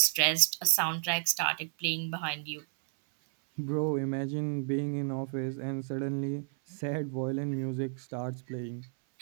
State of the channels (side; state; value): left; silent; 57 dB below the other